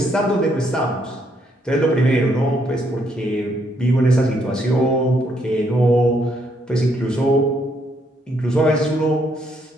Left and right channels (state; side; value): normal; both; correlation 0.73